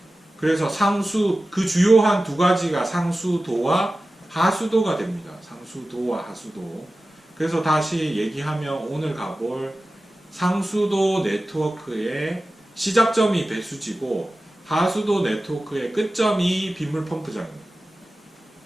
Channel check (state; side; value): normal; both; correlation 0.95